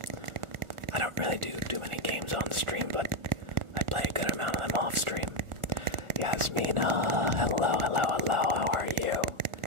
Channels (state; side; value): late; left; 1.4 ms